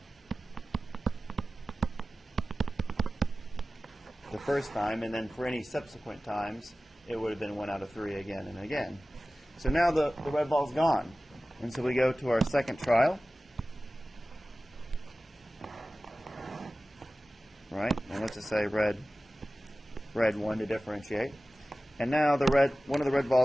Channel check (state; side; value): normal; both; correlation 0.96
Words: The first time, and then for any subsequent times, it would have been 1 out of 3 again and again. So now the red ball's gone. And so we go to our second trial. Right? And let's just say red 1 to differentiate. And now one of the red